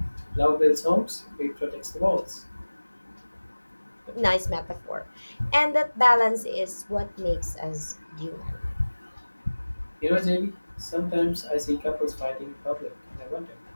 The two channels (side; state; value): both; inverted; correlation -1.00